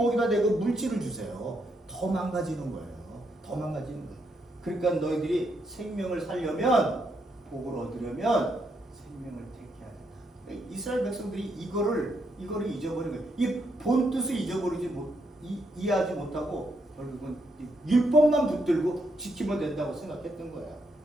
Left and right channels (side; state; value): both; normal; correlation 0.78